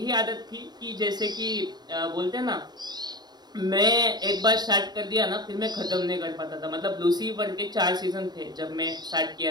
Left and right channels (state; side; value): late; left; 0.20 ms